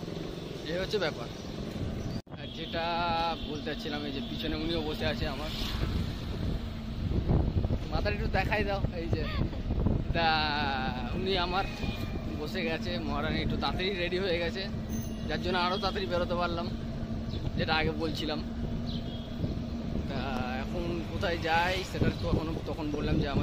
এই হচ্ছে ব্যাপার। আর যেটা বলতে চাচ্ছিলাম, এই যে পিছনে উনিও বসে আছে আমার, মাথাটা একটু দেখাই দাও। এই যে তা উনি আমার বসে গেছে, মহারানী একটু তাড়াতাড়ি রেডি হয়ে গেছে, যার জন্য আরও তাড়াতাড়ি বেরোতে পারলাম, যেটা আগে বলছিলাম। তা এখন কোথায় যাই সেটা তো তখন বললাম যে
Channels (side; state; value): both; identical; correlation 1.00